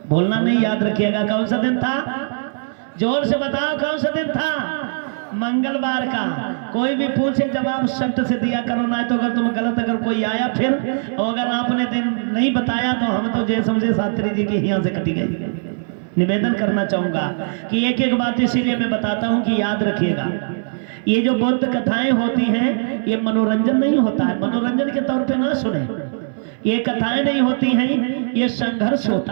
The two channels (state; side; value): silent; left; 66 dB below the other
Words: बोलना नहीं, याद रखिएगा। कौन सा दिन था? जोर से बताओ, कौन सा दिन था? मंगलवार का। कोई भी पूछे जवाब सख्त से दिया करो, ना तो अगर तुम गलत, अगर कोई आया फिर, और अगर आपने दिन नहीं बताया तो हम तो जय समझे शास्त्री जी के यहाँ से कटी गई। निवेदन करना चाहूंगा कि एक एक बात इसीलिए मैं बताता हूँ कि याद रखिएगा। ये जो बौद्ध कथाएं होती हैं, ये मनोरंजन नहीं होता है। मनोरंजन के तौर पे ना सुने, ये कथाएं नहीं होती हैं, ये संघर्ष होता